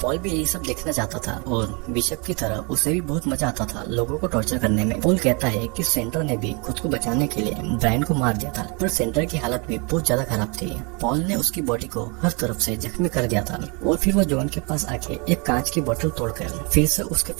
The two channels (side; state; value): left; quieter; 32.0 dB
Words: पॉल भी यही सब देखना चाहता था और बिशप की तरह उसे भी बहुत मजा आता था लोगों को टॉर्चर करने में। पॉल कहता है कि सेंटर ने भी खुद को बचाने के लिए ब्रायन को मार दिया था, पर सेंटर की हालत भी बहुत ज्यादा खराब थी। पॉल ने उसकी बॉडी को हर तरफ से जख्मी कर दिया था और फिर वो जॉन के पास आके एक कांच की बोतल तोड़कर फिर से उसके